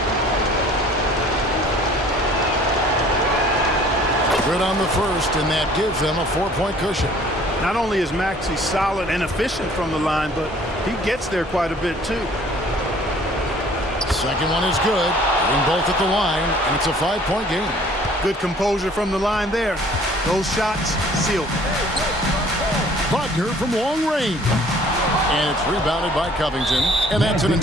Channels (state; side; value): normal; both; correlation 0.54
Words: Good on the first, and that gives them a 4-point cushion. Not only is Maxey solid and efficient from the line, but he gets there quite a bit too. Second one is good. Getting both at the line, and it's a 5-point game. Good composure from the line there. Those shots sealed. Wagner from long range. And it's rebounded by Covington, and that's an